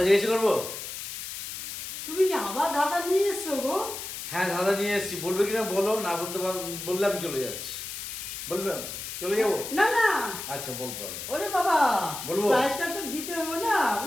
জিজ্ঞেস করবো? তুমি কি আবার ধাঁধা নিয়ে এসছো গো? হ্যাঁ, ধাঁধা নিয়ে এসেছি। বলবে কিনা বলো, না বলতে বললে আমি চলে যাচ্ছি। বলবে? চলে যাবো? না না, আচ্ছা বলতে হবে। ওরে বাবা, বলবো? প্রাইসটা তো দিতে হবে না।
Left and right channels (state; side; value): noise; left; hiss, 8 dB below the sound